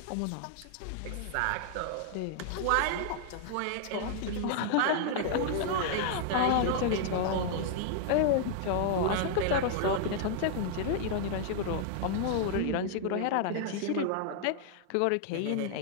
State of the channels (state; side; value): different; both; correlation -0.01